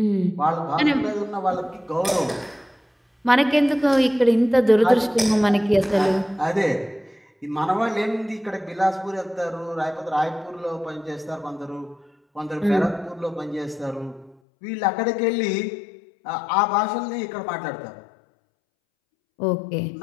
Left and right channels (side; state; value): right; drops out; at 14.4 s